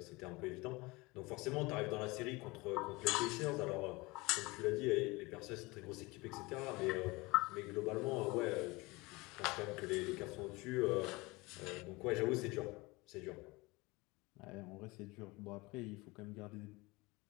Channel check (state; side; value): quieter; right; 23.6 dB